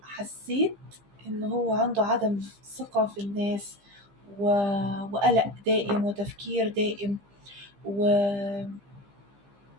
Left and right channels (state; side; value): late; left; 15 ms